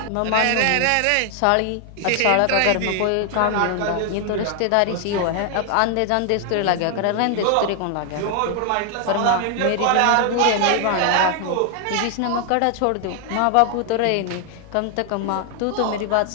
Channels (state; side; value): different; both; correlation 0.00